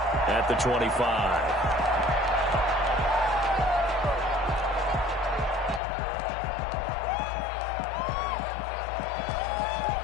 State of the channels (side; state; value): right; drops out; at 5.8 s